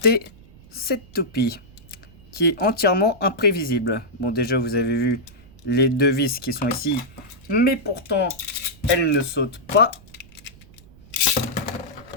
cette toupie qui est entièrement imprévisible. Bon, déjà vous avez vu les deux vis qui sont ici, mais pourtant elle ne saute pas.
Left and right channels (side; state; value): right; noise; rumble, 23 dB below the sound